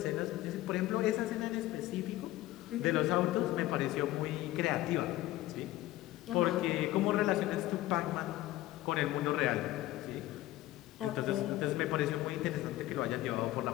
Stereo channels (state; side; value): quieter; right; 16.1 dB